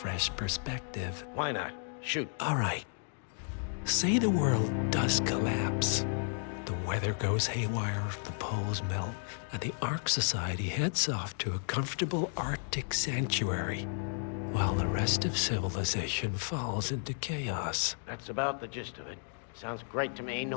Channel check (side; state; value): right; silent; 56 dB below the other